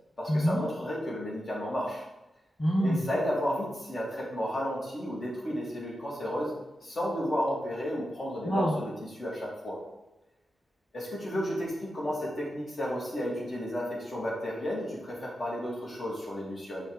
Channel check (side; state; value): both; normal; correlation 0.89